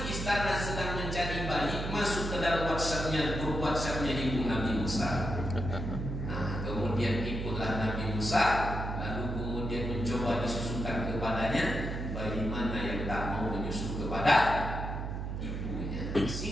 istana sedang mencari bayi masuk ke dalam grup WhatsAppnya ibu Nabi Musa. Nah, kemudian ikutlah Nabi Musa, lalu kemudian mencoba disusukan kepadanya bayi mana yang tak mau menyusu kepada ibunya.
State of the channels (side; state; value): right; noise; hum, 4 dB below the sound